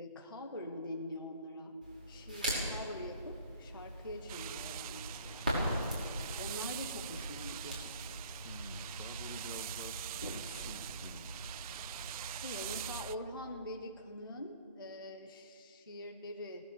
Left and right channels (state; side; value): inverted; both; correlation -0.51